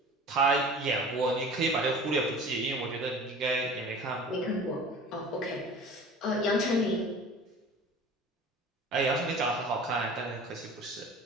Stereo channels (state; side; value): normal; both; correlation 0.41